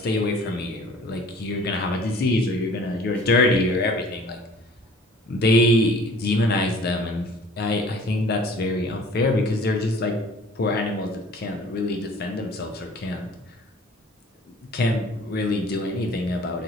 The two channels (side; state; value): both; normal; correlation 0.50